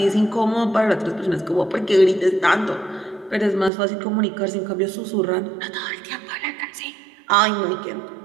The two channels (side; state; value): left; drops out; at 3.7 s